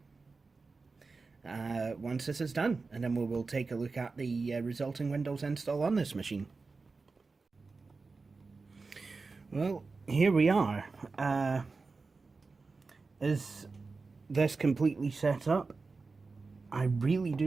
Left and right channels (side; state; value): left; quieter; 4.1 dB